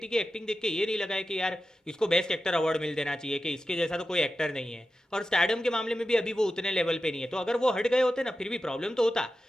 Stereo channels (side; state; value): both; normal; correlation 0.92